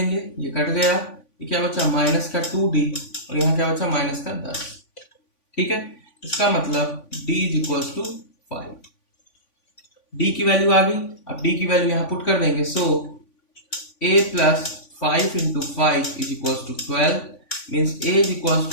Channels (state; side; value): late; right; 3.5 ms